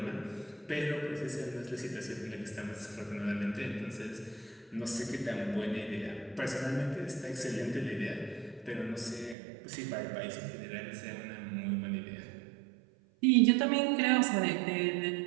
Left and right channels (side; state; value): left; drops out; at 9.3 s